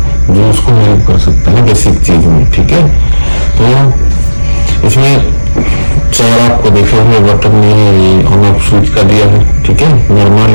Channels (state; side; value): inverted; both; correlation -1.00